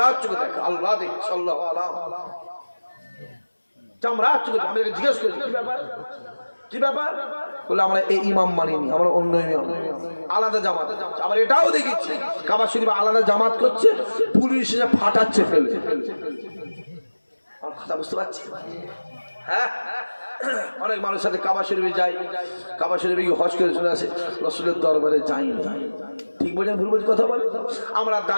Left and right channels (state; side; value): inverted; both; correlation -1.00